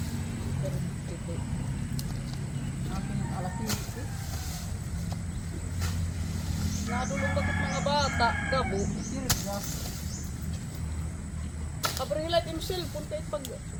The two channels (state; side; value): identical; both; correlation 1.00